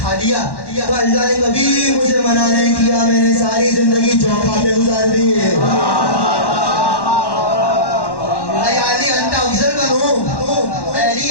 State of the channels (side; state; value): right; late; 1.1 ms